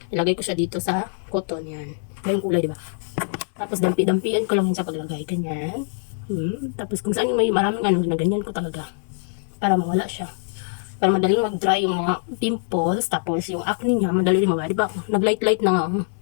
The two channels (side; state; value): right; silent; 63 dB below the other